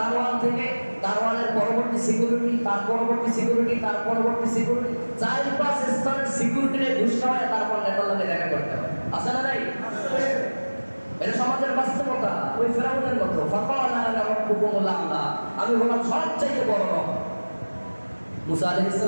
থেকে দারোয়ানের পরবর্তী সিকিউরিটি, তার পরবর্তী সিকিউরিটি, তার পরবর্তী সিকিউরিটি, 4-5 স্তরের সিকিউরিটিরে ঘুষ খাওয়ায় তারপর নেতার সাথে দেখা করতে হয়। আছে না নাই? এটা সমাজের বাস্তবতা। ওই ফেরাউনের মতো ফাকালা আনা রাব্বুকুমুল আ'লা, আমি হলাম সবচেয়ে বড় রব। মুসা আলাইহিস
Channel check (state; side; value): inverted; both; correlation -1.00